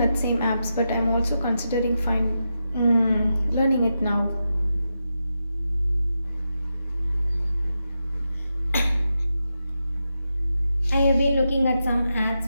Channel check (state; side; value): inverted; both; correlation -0.88